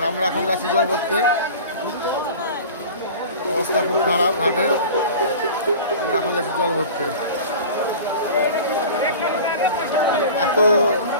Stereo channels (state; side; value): inverted; both; correlation -0.37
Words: আমরা এখন যাচ্ছি জল ভরতে, অবস্থা খুব খারাপ ঘাটের। আমরা এখন যাচ্ছি জল ভরতে, এত